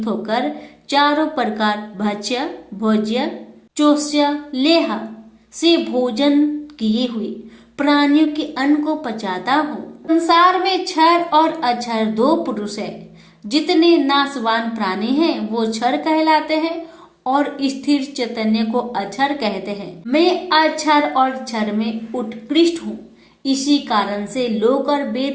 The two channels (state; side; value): identical; both; correlation 1.00